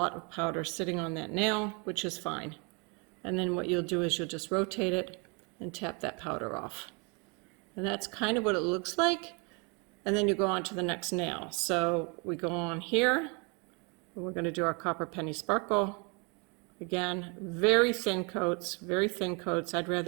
of powder sitting on that nail, which is fine. And then what you'll do is you'll just rotate it and tap that powder off. And that's kind of what it looks like. And then you go on to the next nail. So we go on here, and we're going to do our Copper Penny Sparkle. Again, very thin coats. I'd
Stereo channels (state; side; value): quieter; left; 32.3 dB